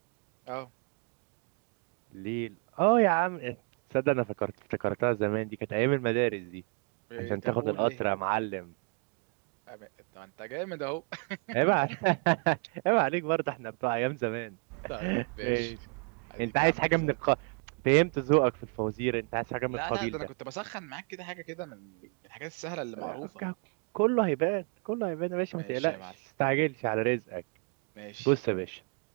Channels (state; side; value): quieter; left; 35.8 dB